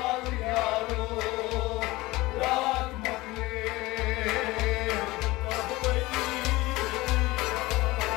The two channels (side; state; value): right; quieter; 20.2 dB